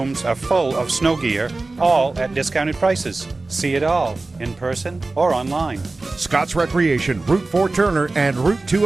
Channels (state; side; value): quieter; left; 3.3 dB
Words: are full of snow gear, all at discounted prices. See it all in person or online. Scott's Recreation, Route 4 Turner and Route